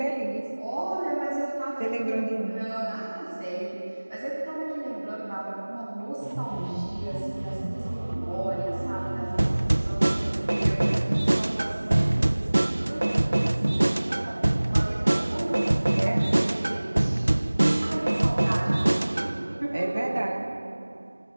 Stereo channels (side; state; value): both; inverted; correlation -1.00